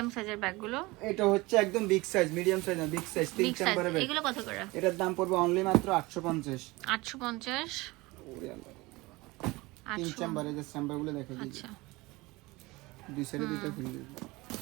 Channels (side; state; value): left; quieter; 22.2 dB